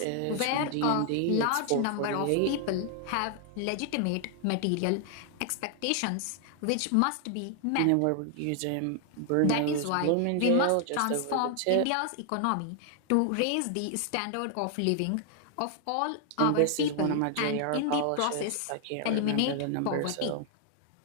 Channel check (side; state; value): both; different; correlation 0.00